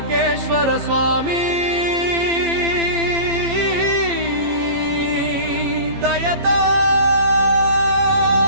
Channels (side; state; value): left; late; 15 ms